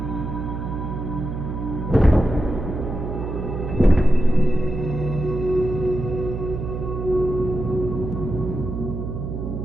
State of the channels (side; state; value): right; noise; hum, 5 dB below the sound